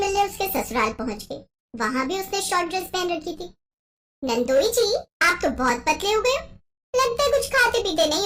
उसके ससुराल पहुंच गई। वहाँ भी उसने शॉर्ट ड्रेस पहन रखी थी। नंदोई जी, आप तो बहुत पतले हो गए हो, लगता है कुछ खाते पीते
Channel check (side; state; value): both; identical; correlation 1.00